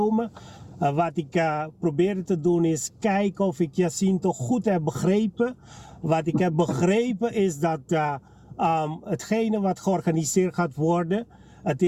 Wat ik probeerde te doen is kijken of ik Jacinto goed heb begrepen. Wat ik heb begrepen is dat hetgene wat georganiseerd gaat worden, het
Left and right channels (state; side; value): identical; both; correlation 1.00